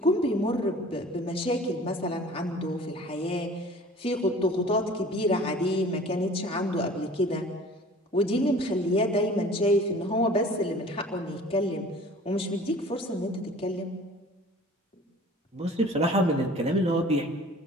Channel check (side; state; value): both; normal; correlation 0.46